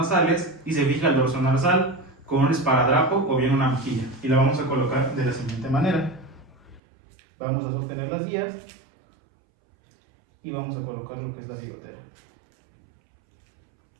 y se fija el dorso nasal con un esparadrapo o bien una mejilla. Y la vamos a colocar de la siguiente manera. Vamos a sostener las guías y vamos a colocar lo que es la bigotera.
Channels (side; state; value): left; drops out; at 6.8 s